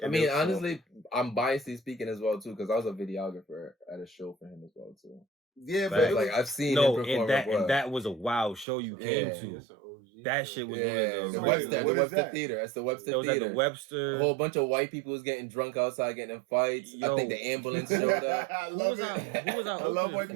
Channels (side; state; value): left; drops out; at 8.7 s